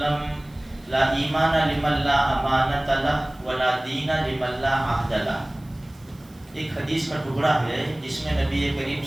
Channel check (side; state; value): right; noise; hiss, 29 dB below the sound